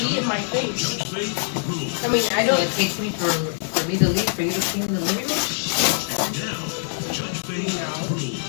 in my face. I mean, I don't. It takes me for me to leave for you to see in the living room. Judge Faith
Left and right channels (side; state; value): right; silent; 63 dB below the other